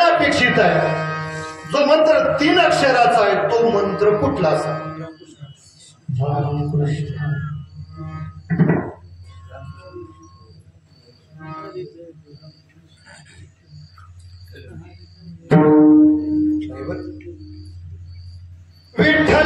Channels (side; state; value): both; identical; correlation 1.00